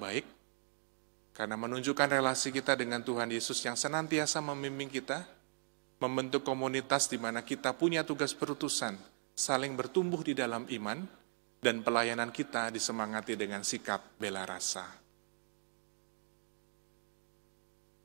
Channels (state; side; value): silent; left; digital silence